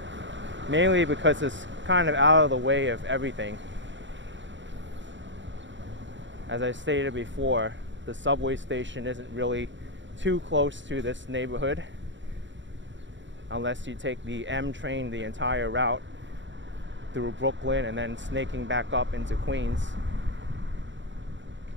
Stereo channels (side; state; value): left; late; 0.54 ms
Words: mainly because it's kind of out of the way of everything. As I stated before, the subway station isn't really too close to this neighborhood unless you take the M train the entire route through Brooklyn and then snaking back up into Queens.